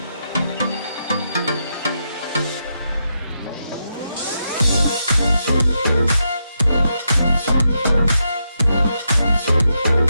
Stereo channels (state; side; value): inverted; both; correlation -0.83